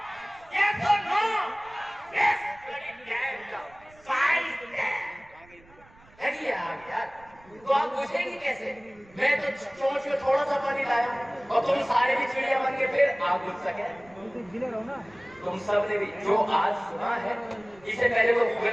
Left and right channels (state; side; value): noise; right; rumble, 26 dB below the sound